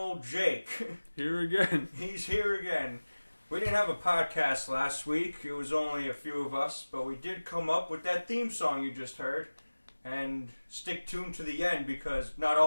Jake. Here again. He's here again. We didn't have a podcast last week. It was only a few of us, but we did come up with that theme song you just heard. And stick tuned to the end, because not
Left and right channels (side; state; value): both; inverted; correlation -1.00